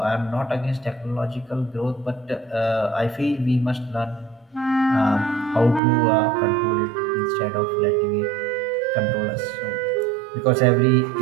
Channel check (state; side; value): drops out; left; at 5.8 s